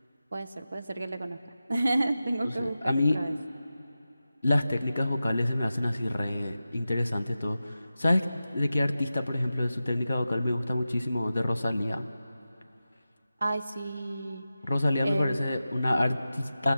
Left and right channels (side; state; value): both; inverted; correlation -0.93